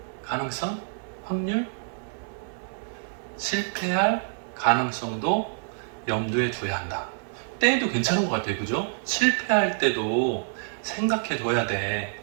가능성, 확률, 실패할 가능성도 염두에 둬야 한다. 때도 괜찮은 것 같아요, 그죠? 실패할 때도 생각해 둬야 돼.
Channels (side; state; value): left; silent; digital silence